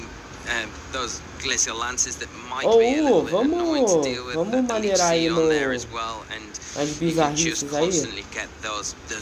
those Glacial Lances that might be a little bit annoying to deal with. The Leech Seed on there as well, and you can just constantly get those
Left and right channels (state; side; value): identical; both; correlation 1.00